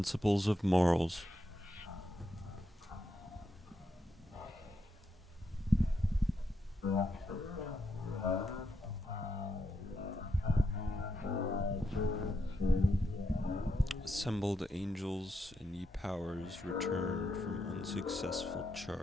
of Morals. Assembled angels and ye powers returned from unsuccessful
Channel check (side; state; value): both; normal; correlation 0.82